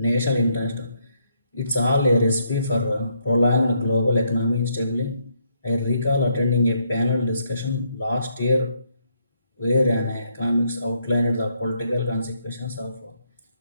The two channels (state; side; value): inverted; both; correlation -0.74